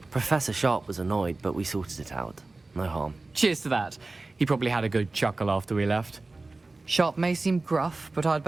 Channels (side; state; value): left; quieter; 3.3 dB